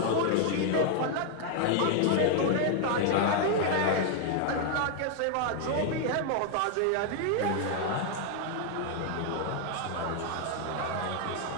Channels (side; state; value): both; different; correlation 0.00